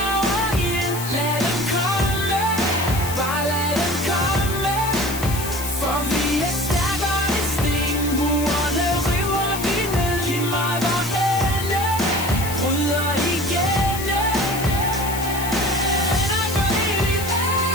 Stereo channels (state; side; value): noise; left; hiss, 8 dB below the sound